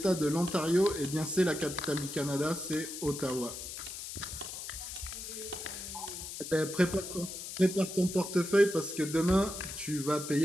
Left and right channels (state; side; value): noise; left; hiss, 8 dB below the sound